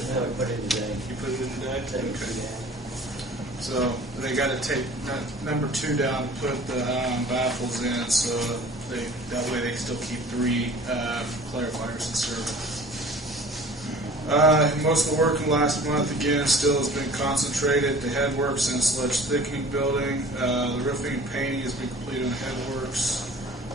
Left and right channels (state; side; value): normal; both; correlation 0.46